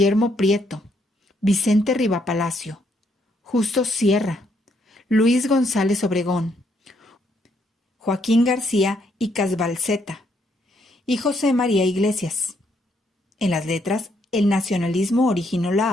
Prieto, Vicente Riva Palacio, Justo Sierra, Luis González Obregón, Joaquín García y Casbalceta y José María Iglesias. En las letras, el nacionalismo originó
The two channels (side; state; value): both; normal; correlation 0.73